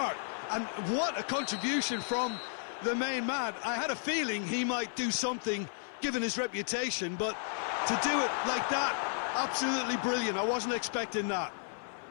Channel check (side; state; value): right; silent; 56 dB below the other